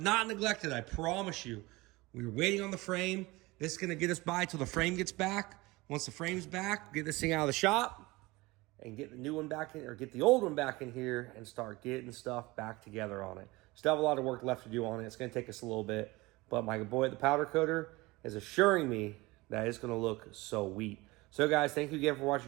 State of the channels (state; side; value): quieter; left; 21.9 dB